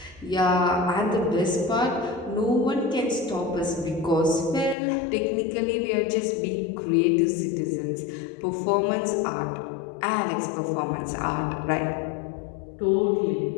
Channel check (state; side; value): drops out; right; at 4.8 s